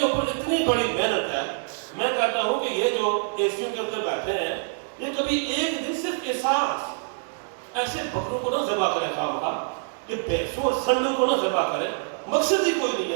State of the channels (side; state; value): left; silent; digital silence